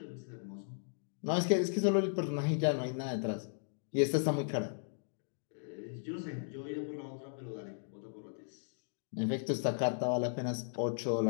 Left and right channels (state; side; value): silent; right; digital silence